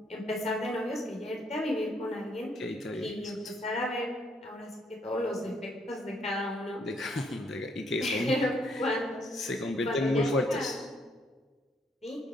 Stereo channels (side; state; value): both; normal; correlation 0.70